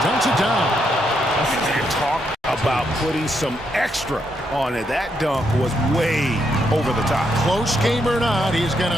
dunks it down. Talk about putting some extra on it. That dunk was way over the top. Close game or not, he's going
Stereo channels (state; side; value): normal; both; correlation 0.78